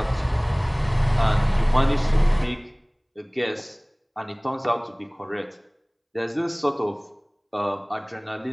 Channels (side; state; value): both; identical; correlation 1.00